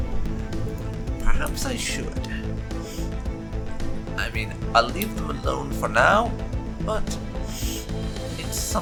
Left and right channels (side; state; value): both; identical; correlation 1.00